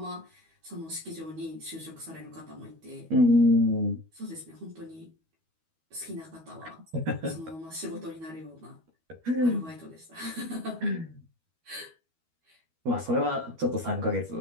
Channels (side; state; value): left; late; 12 ms